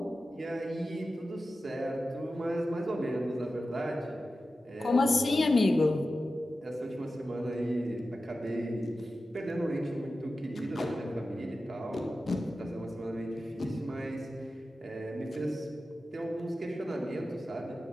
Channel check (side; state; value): both; normal; correlation 0.93